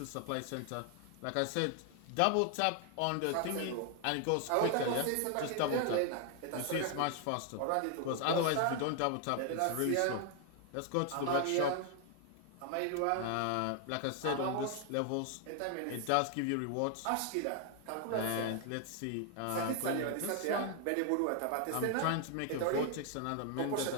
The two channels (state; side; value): different; both; correlation 0.00